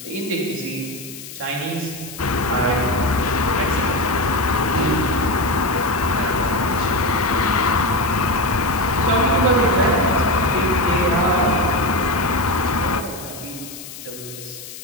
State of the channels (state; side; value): noise; left; hiss, 13 dB below the sound